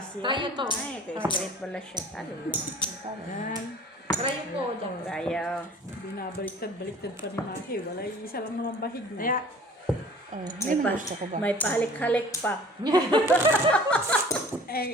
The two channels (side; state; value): both; normal; correlation 0.47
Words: yan. Tayo to. Ay, kaya straight pala siya. Talo lang. Tayo ko, jack. Tayo. Binabaliktad-baliktad pa ni Maki. Wala, isa lang naman bahig na. Kaya, Oh, yan ang gusto ko ba? May pahalik-halik pa.